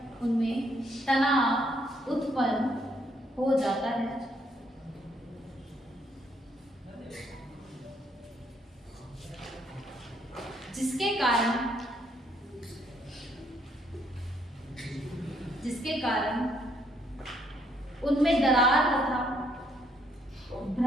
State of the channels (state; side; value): normal; both; correlation 0.70